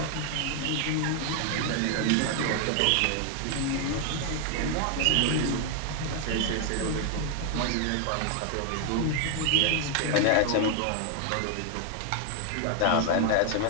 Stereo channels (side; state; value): both; different; correlation 0.00